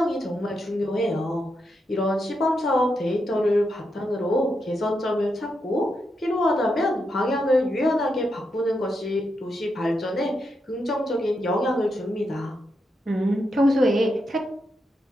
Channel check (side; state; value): both; normal; correlation 0.84